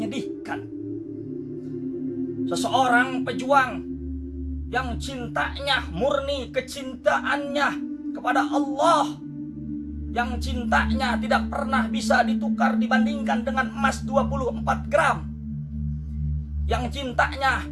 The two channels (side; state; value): both; identical; correlation 1.00